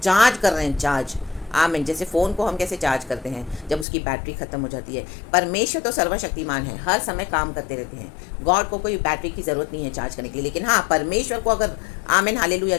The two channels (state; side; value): drops out; right; at 3.9 s